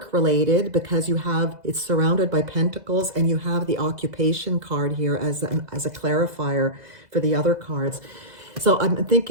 related because it's surrounded by pentacles, and you have the occupation card here as a clarifier for the other cards. So I'm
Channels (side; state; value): left; late; 2.0 ms